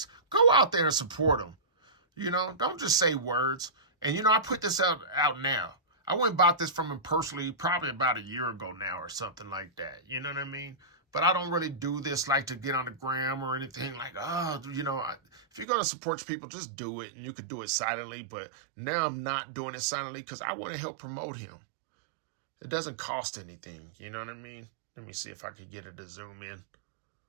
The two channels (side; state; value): left; drops out; at 15.7 s